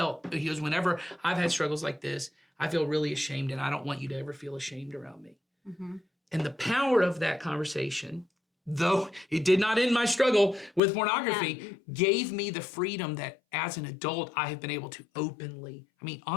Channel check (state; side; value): drops out; right; at 10.8 s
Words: whenever I've had struggles like this, I feel really ashamed, and I don't want you to ever feel ashamed around me. Mm-hmm. And the power of that conversation, though it did not end my struggle with pornography, gave me the freedom that as an adult, I have been able to openly,